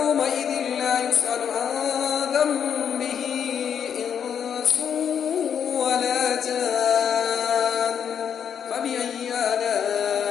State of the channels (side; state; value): right; quieter; 8.0 dB